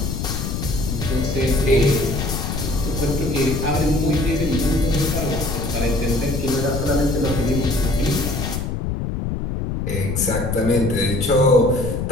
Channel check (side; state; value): left; noise; rumble, 3 dB below the sound